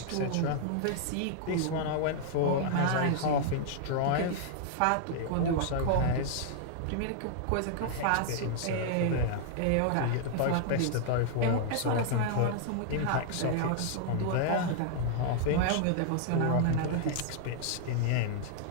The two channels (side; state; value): both; different; correlation -0.01